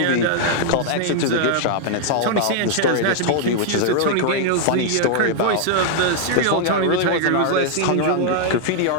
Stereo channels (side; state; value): both; different; correlation 0.00